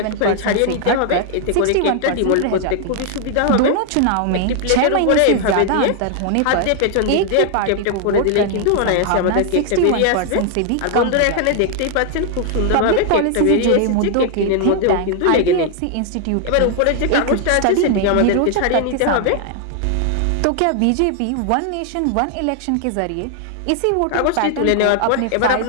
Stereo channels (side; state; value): both; different; correlation 0.00